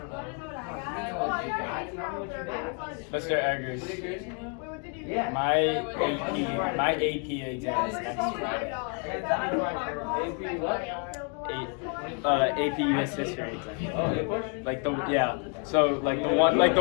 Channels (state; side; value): quieter; right; 38.4 dB